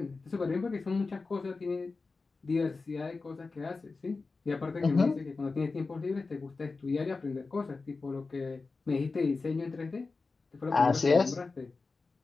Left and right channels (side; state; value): right; quieter; 4.0 dB